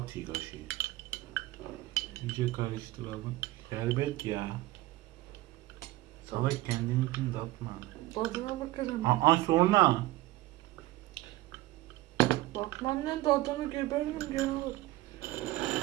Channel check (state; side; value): quieter; left; 17.6 dB